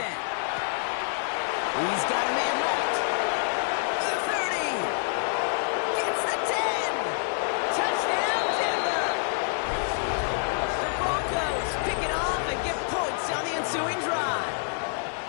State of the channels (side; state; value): right; silent; digital silence